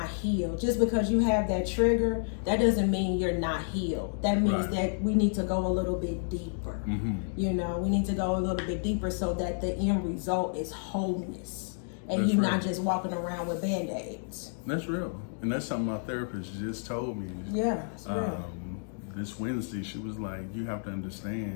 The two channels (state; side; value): silent; right; digital silence